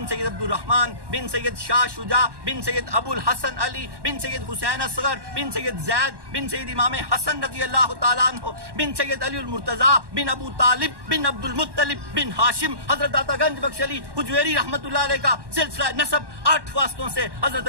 سید عبد الرحمن بن سید شاہ شجاع بن سید ابو الحسن علی بن سید حسین اصغر بن سید زید بن سید امام حسن رضی اللہ تعالیٰ عنہ بن سید علی المرتضیٰ بن ابو طالب بن عبد المطلب بن ہاشم حضرت عطا گنج بخش علی حجویری رحمۃ اللہ علیہ کا سلسلہ نسب 8 واسطوں سے حضرت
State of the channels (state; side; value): late; left; 1.1 ms